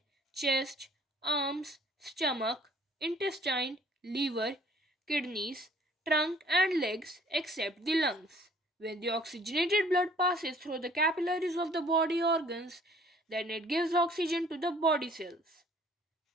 chest, arms, stomach, intestine, liver, kidneys, trunk and legs except the lungs. When the oxygenated blood passes through the capillaries of the body organs, then it gives oxygen to the body cells.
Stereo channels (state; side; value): normal; both; correlation 0.56